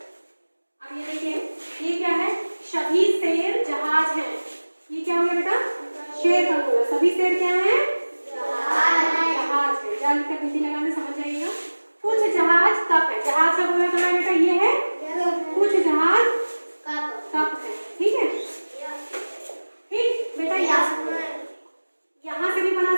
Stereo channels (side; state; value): both; inverted; correlation -1.00